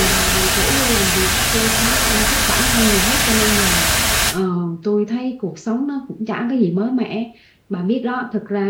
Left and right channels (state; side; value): identical; both; correlation 1.00